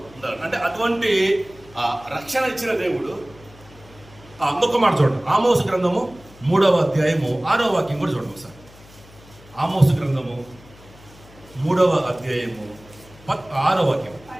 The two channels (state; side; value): noise; left; hum, 23 dB below the sound